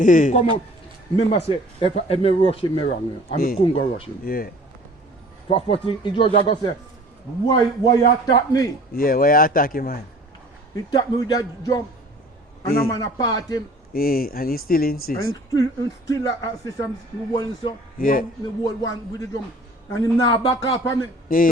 Come out. Remember say, if I rush him wrong, I couldn't go rush him. Yeah. First thing, he just go say, why you attack me? Yeah, why you attack him, man? He attack me with that jump. And I'm gonna part him. Yeah, and he still insists. And still assist him one so. Yeah. The whole one with the jump. And him now back up on me. Yeah.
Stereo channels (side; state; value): both; normal; correlation 0.48